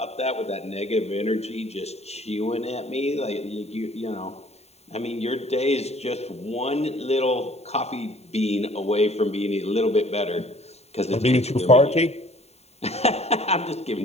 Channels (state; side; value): late; right; 0.31 ms